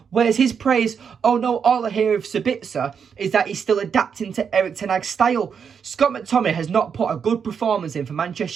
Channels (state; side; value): quieter; left; 6.8 dB